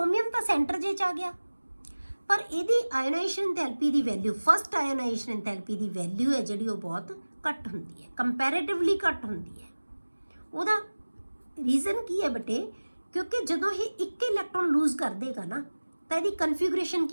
ਤਾਂ ਸੈਂਟਰ ਜੇ 'ਚ ਆ ਗਿਆ, ਪਰ ਇਹਦੀ ਆਇਨਾਈਜ਼ੇਸ਼ਨ ਐਂਥੈਲਪੀ ਦੀ ਵੈਲਿਊ, ਫਸਟ ਆਇਨਾਈਜ਼ੇਸ਼ਨ ਐਂਥੈਲਪੀ ਦੀ ਵੈਲਿਊ ਹੈ ਜਿਹੜੀ ਉਹ ਬਹੁਤ ਘੱਟ ਹੁੰਦੀ ਹੈ, ਕੰਪੈਰੇਟਿਵਲੀ ਘੱਟ ਹੁੰਦੀ ਹੈ। ਉਹਦਾ ਰੀਜ਼ਨ ਕੀ ਹੈ ਬੇਟੇ, ਕਿਉਂਕਿ ਜਦੋਂ ਇਹ ਇੱਕ ਇਲੈਕਟ੍ਰੋਨ ਲੂਜ਼ ਕਰ ਦੇਗਾ ਨਾ, ਤਾਂ ਇਹਦੀ ਕਨਫਿਗੂਰੇਸ਼ਨ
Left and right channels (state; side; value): inverted; both; correlation -1.00